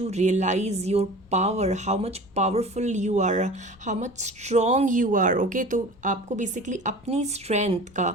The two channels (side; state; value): both; normal; correlation 0.39